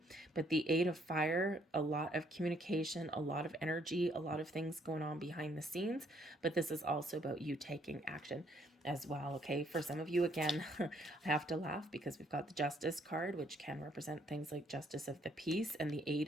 But the 8 of fire, a lot of communication, a lot of energy, a lot of things going on behind the scenes, but this is also about you taking action as well. Okay, for some of you, again, I have to laugh because we've got the Justice card, which can represent things like justice of the peace, and the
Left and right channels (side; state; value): both; normal; correlation 0.67